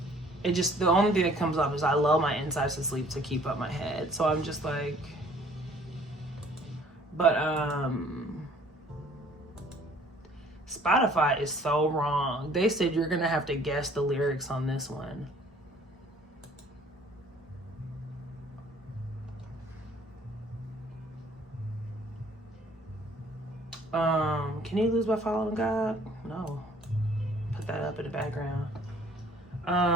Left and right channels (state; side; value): normal; both; correlation 0.56